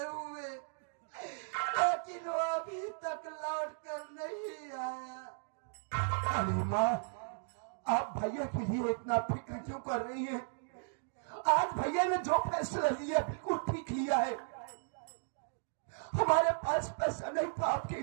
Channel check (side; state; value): left; silent; digital silence